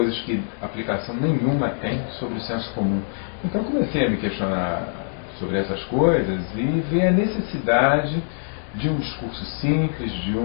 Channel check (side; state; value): right; silent; digital silence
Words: que aplicação nenhuma tem sobre o senso comum. Então comecei a me questionar sobre essas coisas e ver a necessidade de um discurso simples, de